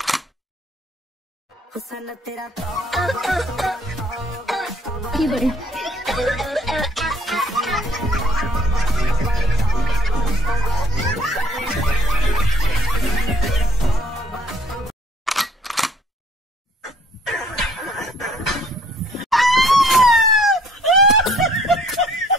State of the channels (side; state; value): both; normal; correlation 0.58